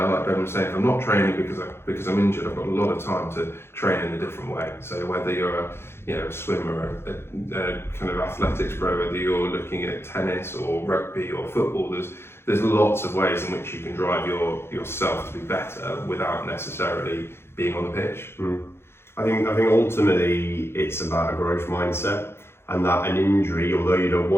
like Ben was saying, I'm not training because I'm injured, I've got a lot of time to train in a different way. So whether you're a swimmer, a kind of athletics pro, whether you're looking at tennis or rugby or football, there's lots of ways in which you can drive yourself to be better without necessarily being on the pitch. I think ultimately it's about a growth mindset, and that an injury, although you don't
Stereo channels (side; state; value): right; late; 0.12 ms